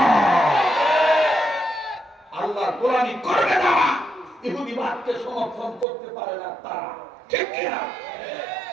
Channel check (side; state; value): left; drops out; at 5.9 s